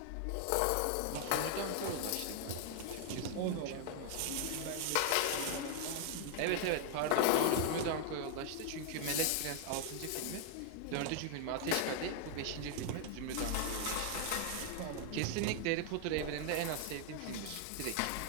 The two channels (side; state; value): both; different; correlation 0.00